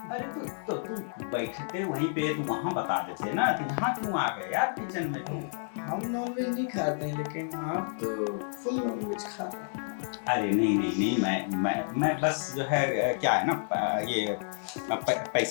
अरे तो तुम बैठे थे वहीं पे, तुम वहाँ बता देते ना, तो यहाँ क्यों आ गए यार किचन में तुम? हम नॉनवेज नहीं खाते हैं, लेकिन आप तो फुल नॉनवेज खाते हैं। अरे नहीं, मैं बस जो है क्या है ना, ये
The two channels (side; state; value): right; silent; digital silence